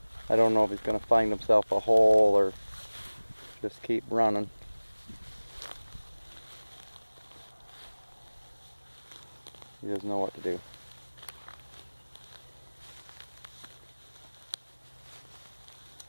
I don't know if he's gonna find himself a hole or just keep running. He doesn't know what to do.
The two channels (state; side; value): inverted; both; correlation -1.00